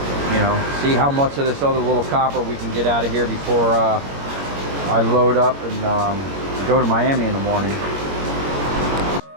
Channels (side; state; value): left; late; 21 ms